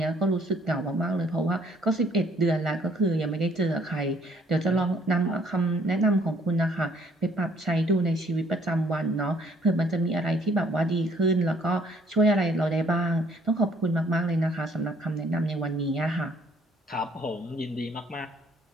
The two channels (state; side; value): normal; both; correlation 0.62